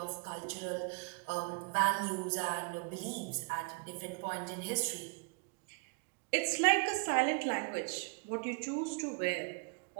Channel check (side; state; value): left; quieter; 35.5 dB